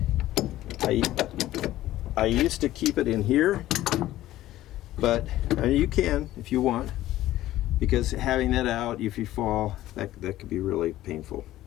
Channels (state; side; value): quieter; right; 14.8 dB